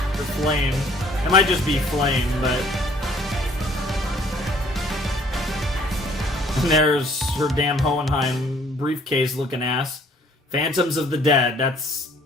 Flame. It might just be Flame, but... And there's her damn Hohenheim briefcase looking ass. Phantoms of the Dead, that's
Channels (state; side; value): normal; both; correlation 0.58